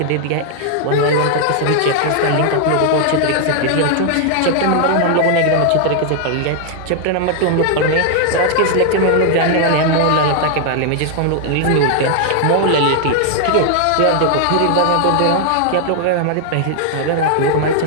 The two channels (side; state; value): both; different; correlation 0.00